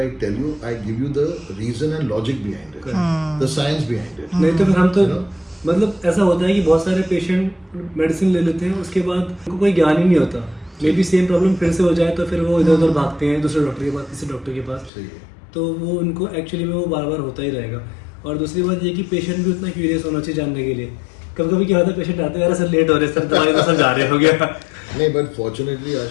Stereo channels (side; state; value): right; drops out; at 14.9 s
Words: tell you, I give you the reason and logic behind it, the science behind it. नहीं तो फिर हम तो मतलब ऐसा होता है कि बहुत सारे पेशेंट मेडिसिन ले लेते हैं, उसके बाद उनको कोई ज्ञान ही नहीं होता. मे बी सेम प्रॉब्लम फिर से हो जाए तो फिर वो इधर उधर भागते हैं दूसरे डॉक्टर के पास, तीसरे डॉक्टर के पास. तो वो उनको एक्चुअली में वो बार बार होता ही रहेगा. और दूसरी बात ये कि पेशेंट भी उतना क्यूरियस होना चाहिए जानने के लिए. कभी कभी क्या होता है, पेशेंट आते हैं, सर लेट हो रहे सर, दवाई तो सब जा रहे हो गया. नहीं, but fortunately